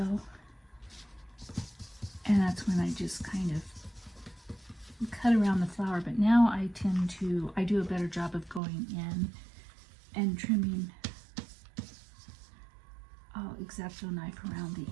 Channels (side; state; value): left; drops out; at 8.6 s